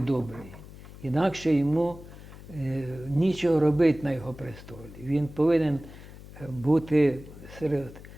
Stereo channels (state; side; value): noise; left; hum, 17 dB below the sound